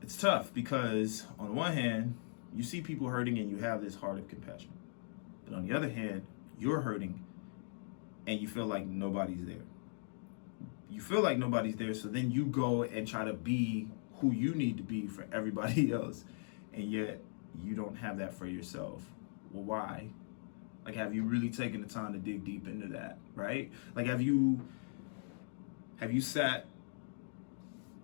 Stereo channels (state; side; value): silent; right; digital silence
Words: It's tough because on the one hand, you see people hurting and you have this heart of compassion. But on the other hand, you're hurting and you feel like nobody's there. You feel like nobody's there, so then you go and try to be who you need to be for everybody else, and yet you don't have that for yourself. Well, why? Like, have you really taken the time to dig deep into that, right? Like, have you sat